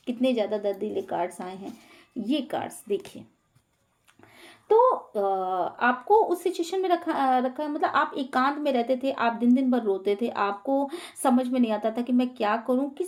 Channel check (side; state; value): both; identical; correlation 1.00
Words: हैं, ये कार्ड्स देखिए। तो आपको उस सिचुएशन में रखा मतलब आप एकांत में रहते थे, आप दिन दिन भर रोते थे, आपको समझ में नहीं आता था कि मैं क्या करूं,